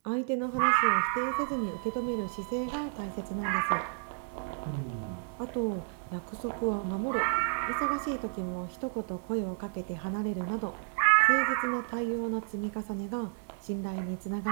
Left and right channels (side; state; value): left; silent; 57 dB below the other